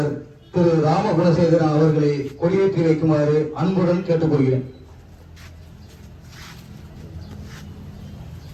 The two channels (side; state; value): both; identical; correlation 1.00